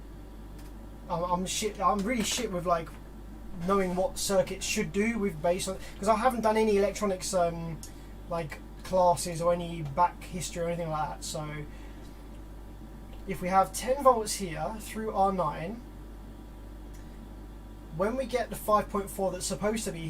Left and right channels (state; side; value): identical; both; correlation 1.00